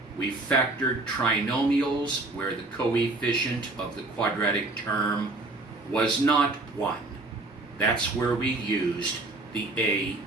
we factored trinomials where the coefficient of the quadratic term was not 1. That's where we used the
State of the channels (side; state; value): left; quieter; 3.0 dB